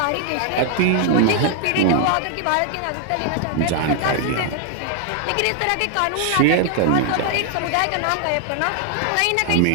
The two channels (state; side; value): different; both; correlation 0.00